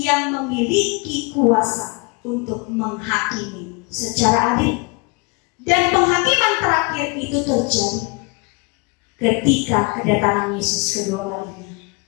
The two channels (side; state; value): right; quieter; 29.7 dB